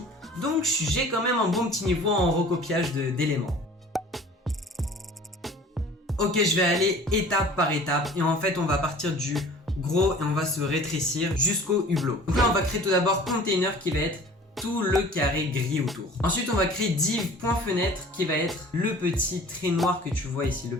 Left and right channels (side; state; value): both; normal; correlation 0.46